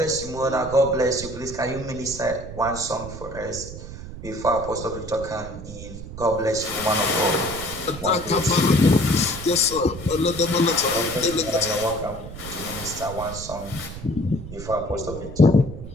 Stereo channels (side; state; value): right; noise; rumble, 12 dB below the sound